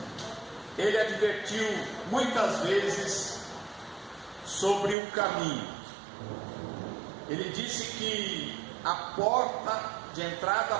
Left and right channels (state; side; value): drops out; left; at 5.0 s